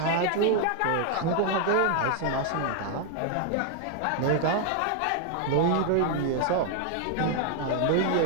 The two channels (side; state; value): both; different; correlation 0.00